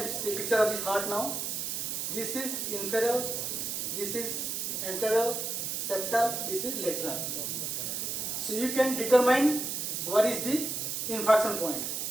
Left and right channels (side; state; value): right; noise; hiss, 2 dB below the sound